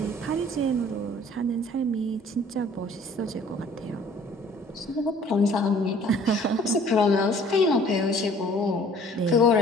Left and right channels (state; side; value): normal; both; correlation 0.53